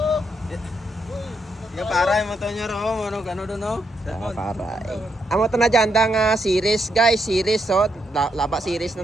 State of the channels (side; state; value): both; normal; correlation 0.79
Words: Yung para yung motor nyo ro, ano doon no? Para. Amo to na dyan nga series guys, series so laba series